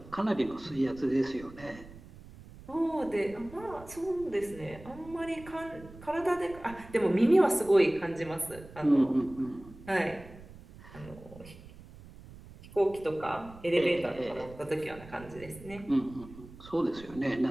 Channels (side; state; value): right; noise; rumble, 18 dB below the sound